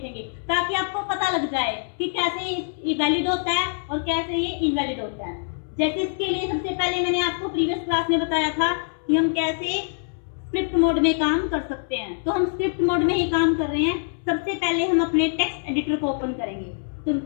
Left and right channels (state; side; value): silent; right; 62 dB below the other